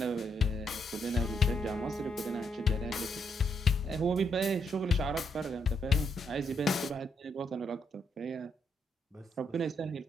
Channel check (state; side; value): normal; both; correlation 0.76